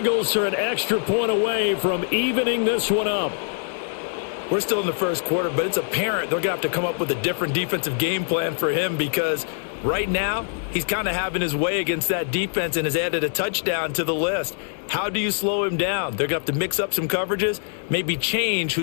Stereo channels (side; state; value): right; silent; 55 dB below the other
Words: are an extra point away from evening this one up. We're still in the 1st quarter, but it's apparent they're going to have to come up with a different defensive game plan for him, because right now he's kind of having his way against that defense and has added a touchdown to the list. How do you slow him down? They're going to have to mix up some coverages, maybe change